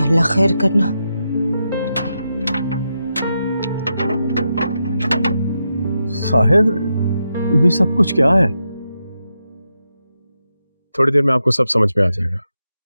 अल्लाह खैर करना। साहिर, ये सब कुछ क्या है? थोड़ी देर में आपको सब समझ में आ जाएगा।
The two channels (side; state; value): both; inverted; correlation -0.86